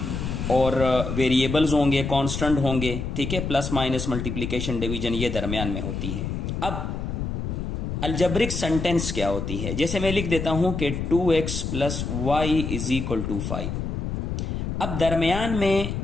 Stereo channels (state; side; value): noise; left; rumble, 3 dB below the sound